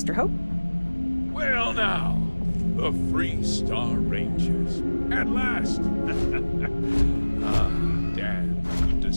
Hope? Well now, the Free Star Rangers. At last! Damn, good to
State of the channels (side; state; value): both; inverted; correlation -1.00